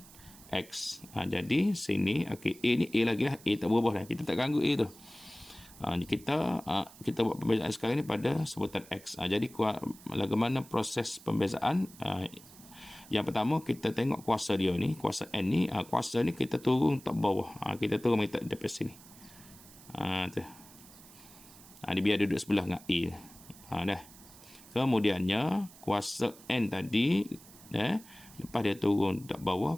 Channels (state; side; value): noise; right; hiss, 21 dB below the sound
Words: X. Jadi sini okey, A ni A lagi lah, A tak berubah lah, kita tak ganggu A tu. Kita buat pembezaan sekarang ni pada sebutan X. Jadi bagaimana proses pembezaan? Yang pertama kita tengok kuasa dia ni, kuasa N ni, kuasa ni kita turun tak bawah. Kita turun minta depan sini. Tu. Dia biar duduk sebelah dengan A. Dah. Kemudiannya kuasa N tadi, lepas dia turun tak